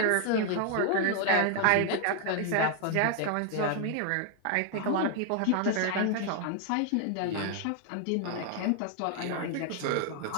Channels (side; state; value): both; different; correlation 0.00